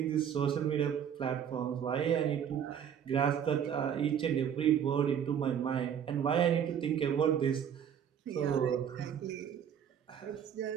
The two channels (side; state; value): left; quieter; 8.7 dB